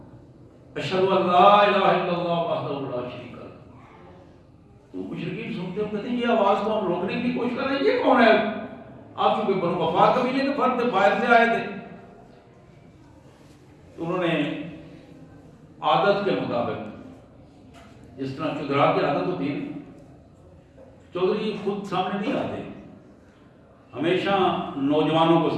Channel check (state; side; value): identical; both; correlation 1.00